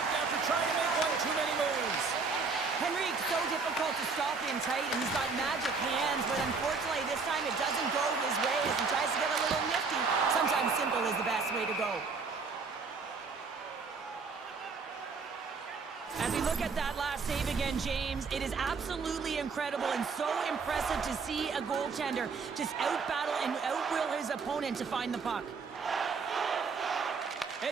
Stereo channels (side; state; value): left; quieter; 4.8 dB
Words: after trying to make one too many moves. Henrique's so difficult to stop in tight, and he's got magic hands, but unfortunately this time it doesn't go his way as he tries to get a little nifty. Sometimes simple is the best way to go. As we look at that last save again, James, it is absolutely incredible and so impressive to see a goaltender just out-battle and out-will his opponent to find the puck.